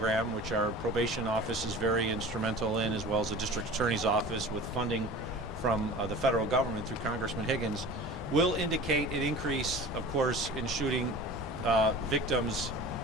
which our probation office is very instrumental in, as well as the District Attorney's Office with funding from the federal government through Congressman Higgins, will indicate an increase, of course, in shooting victims,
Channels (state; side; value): normal; both; correlation 0.39